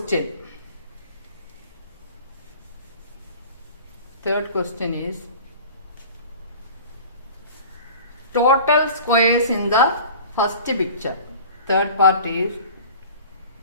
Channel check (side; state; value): both; inverted; correlation -0.42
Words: Third question is total squares in the first picture. Third part is